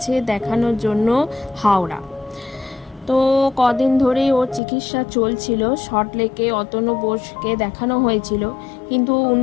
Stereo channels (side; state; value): right; drops out; at 4.6 s